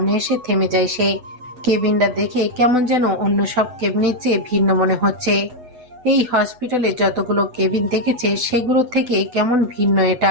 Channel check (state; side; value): late; left; 8.0 ms